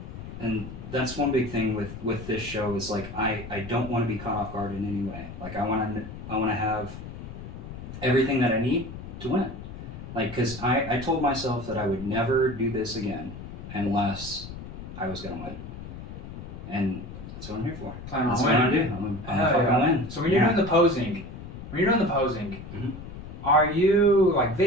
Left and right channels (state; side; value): noise; left; rumble, 11 dB below the sound